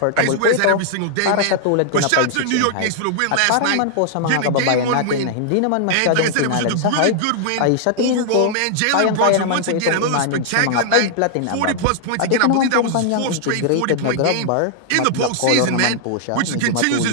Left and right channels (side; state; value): both; different; correlation -0.01